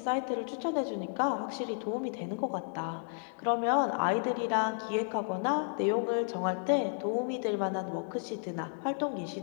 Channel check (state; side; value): silent; right; digital silence